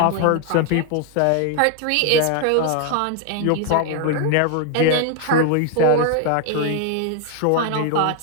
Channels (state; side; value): different; both; correlation 0.00